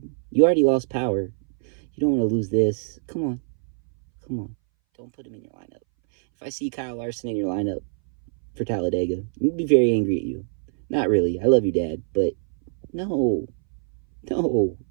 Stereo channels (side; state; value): left; silent; 61 dB below the other